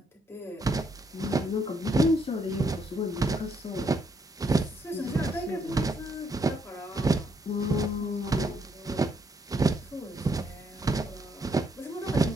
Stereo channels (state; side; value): normal; both; correlation 0.74